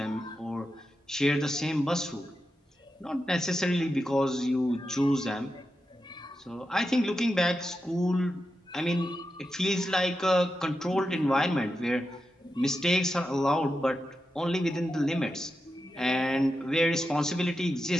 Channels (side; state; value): both; normal; correlation 0.89